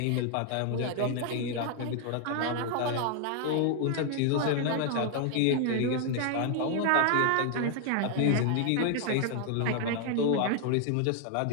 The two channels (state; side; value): different; both; correlation 0.00